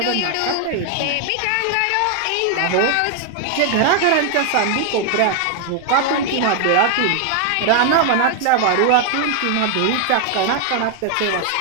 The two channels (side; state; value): both; different; correlation 0.00